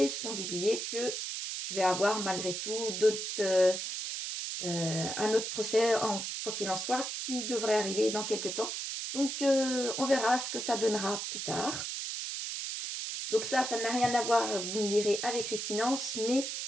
sans oublier que je vais avoir malgré tout un autre procès, quoi qu'il en soit, qui devrait arriver dans quelques temps. Donc, on verra ce que ça donnera plus tard. Donc ça n'a rien à voir, vous me direz, avec les finances, mais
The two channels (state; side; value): noise; right; hiss, 4 dB below the sound